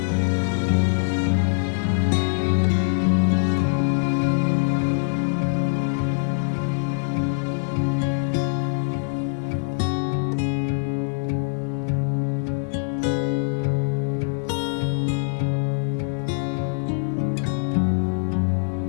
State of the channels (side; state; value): right; silent; digital silence